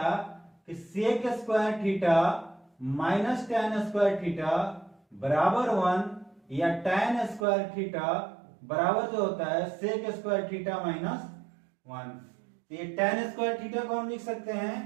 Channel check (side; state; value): left; drops out; at 7.5 s